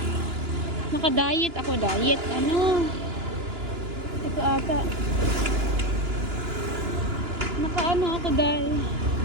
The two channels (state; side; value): late; left; 2.9 ms